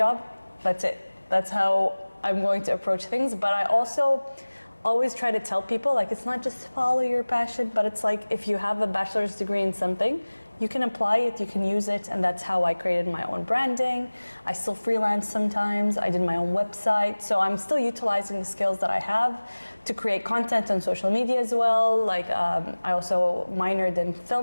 that's it. That's how I'm going to approach things. But I also always try to tell people like it's not just follow your passion, but it's like if you have a bachelor's degree in something, you can apply it, you can use it, and that's how I created my own branding. I still freelance sometimes. I did my own website, so I'm still utilizing the skills that I have to create content on social media as well. Like I also minored in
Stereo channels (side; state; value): both; inverted; correlation -1.00